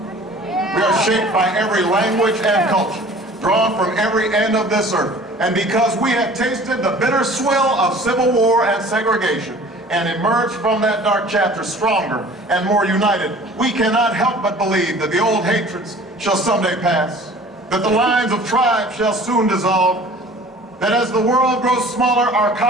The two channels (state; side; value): normal; both; correlation 0.47